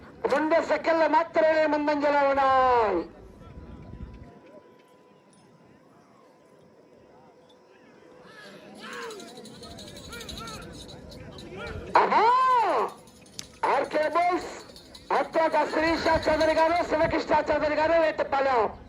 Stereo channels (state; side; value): identical; both; correlation 1.00